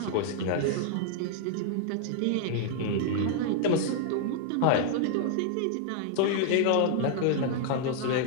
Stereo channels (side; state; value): both; different; correlation -0.01